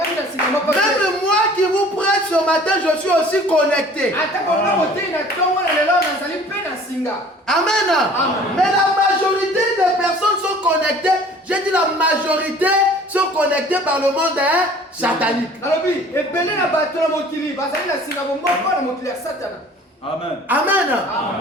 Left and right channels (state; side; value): normal; both; correlation 0.49